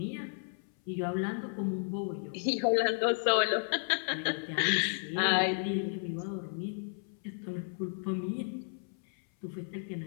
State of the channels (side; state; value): right; silent; 56 dB below the other